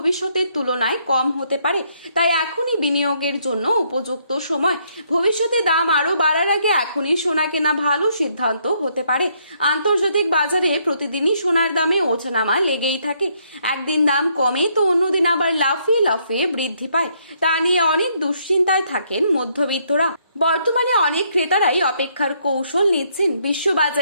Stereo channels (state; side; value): inverted; both; correlation -0.71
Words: তুলনায় কম হতে পারে, তাই এখনই বিনিয়োগের জন্য উপযুক্ত সময়। ভবিষ্যতে দাম আরো বাড়ার আগে এখনই সোনা কেনা ভালো সিদ্ধান্ত হতে পারে। আন্তর্জাতিক বাজারে প্রতিদিনই সোনার দামে ওঠানামা লেগেই থাকে। একদিন দাম কমে তো অন্যদিন আবার লাফিয়ে লাফিয়ে বৃদ্ধি পায়। তা নিয়ে অনেক দুশ্চিন্তায় থাকেন মধ্যবিত্তরা। বর্তমানে অনেক ক্রেতারাই অপেক্ষার কৌশল নিচ্ছেন।